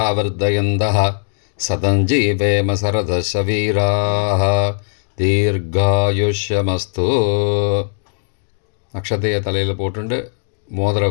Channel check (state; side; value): silent; right; digital silence